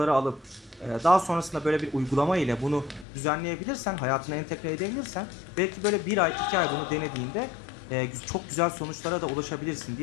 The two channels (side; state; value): right; drops out; at 3.1 s